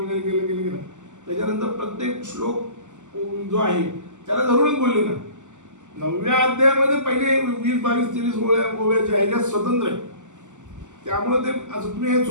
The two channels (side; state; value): left; late; 0.85 ms